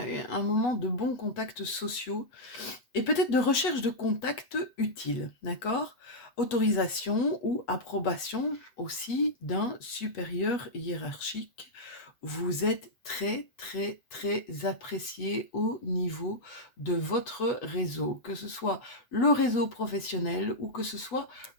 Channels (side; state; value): right; late; 7.9 ms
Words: un moment de bons contacts sociaux et peut-être de recherche de contacts utiles, d'accord? Autorisation ou approbation aussi d'un supérieur hiérarchique. Vous êtes très, très, très apprécié au niveau de votre réseau, que ce soit le réseau professionnel ou que ce soit